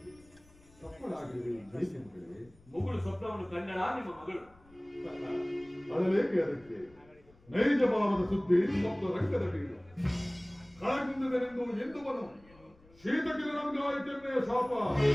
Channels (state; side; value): noise; left; rumble, 27 dB below the sound